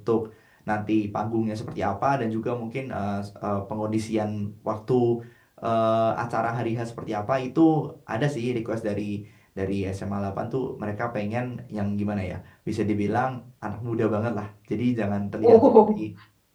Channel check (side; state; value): both; identical; correlation 1.00